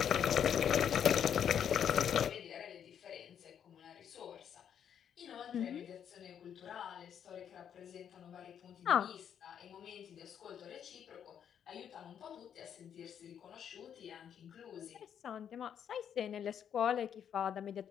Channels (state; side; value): quieter; right; 8.7 dB